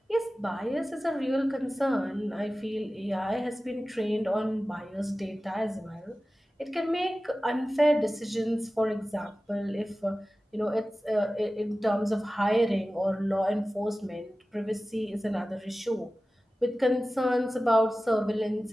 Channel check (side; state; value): both; normal; correlation 0.96